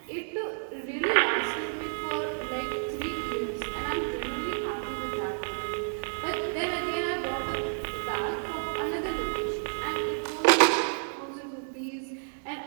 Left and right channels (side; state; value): left; silent; 58 dB below the other